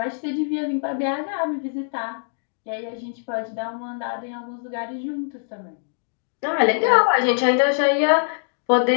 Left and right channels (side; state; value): right; silent; digital silence